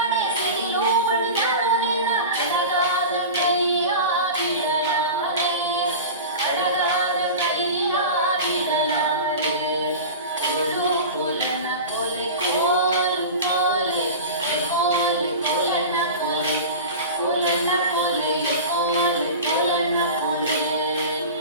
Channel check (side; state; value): both; inverted; correlation -0.30